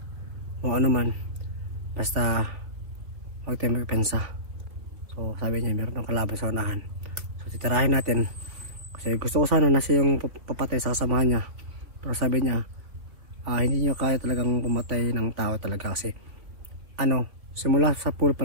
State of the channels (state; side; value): late; left; 3.1 ms